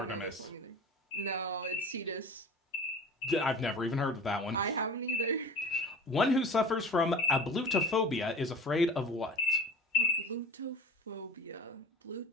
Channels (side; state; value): both; normal; correlation 0.39